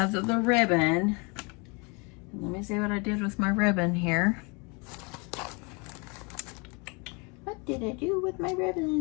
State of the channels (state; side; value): quieter; right; 30.7 dB